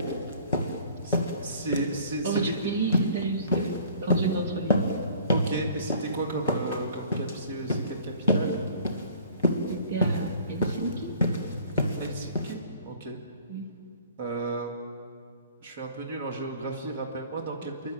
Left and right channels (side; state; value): both; inverted; correlation -0.51